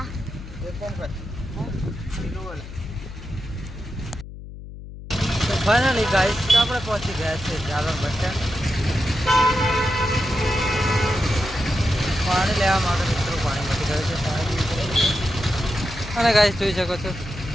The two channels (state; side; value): noise; left; hum, 13 dB below the sound